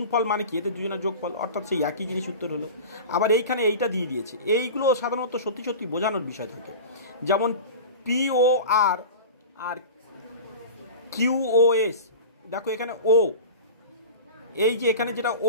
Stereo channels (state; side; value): inverted; both; correlation -0.33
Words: মানে কি, এতে দুজনের যোগফল, অর্থাৎ সেই একই জিনিস উত্তর হলো। আবার এইখানে এইটা দিয়ে দিয়েছে, এইগুলো সাধারণত সত্যি সত্যি বোঝানোর বিষয় থাকে, যেমন POR আর QOS, দেখো এখানে ও, এই যে এখানে যেটা